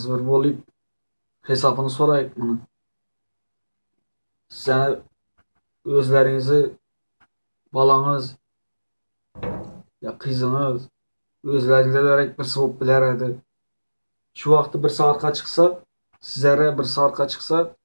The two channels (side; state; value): both; inverted; correlation -1.00